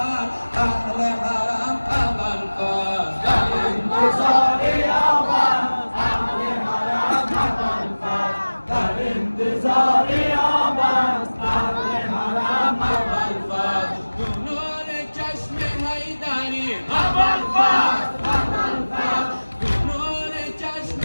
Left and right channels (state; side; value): inverted; both; correlation -1.00